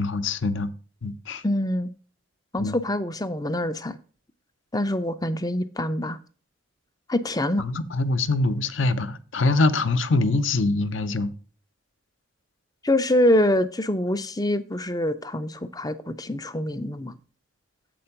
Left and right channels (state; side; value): normal; both; correlation 0.65